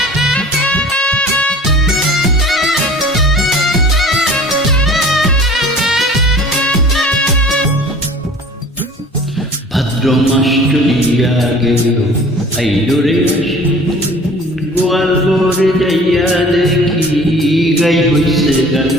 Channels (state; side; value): normal; both; correlation 0.46